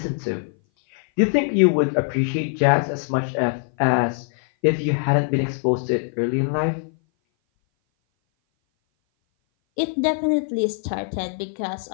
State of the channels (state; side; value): silent; right; 58 dB below the other